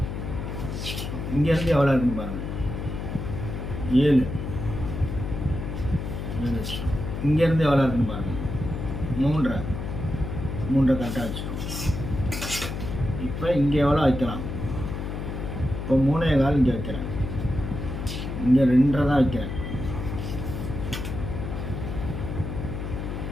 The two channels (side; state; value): left; noise; hum, 5 dB below the sound